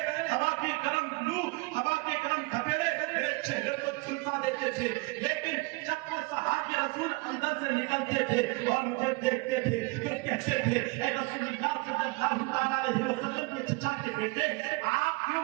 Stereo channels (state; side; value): quieter; left; 26.4 dB